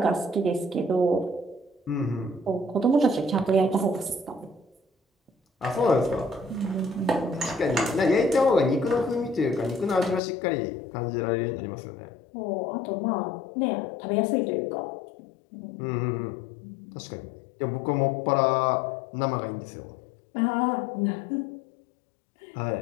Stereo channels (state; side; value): drops out; right; at 10.2 s